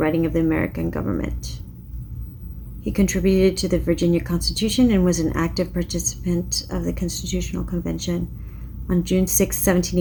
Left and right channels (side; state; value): both; identical; correlation 1.00